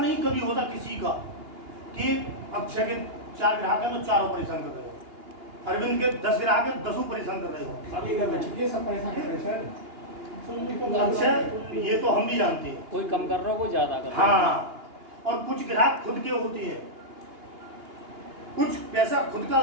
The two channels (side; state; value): left; late; 2.8 ms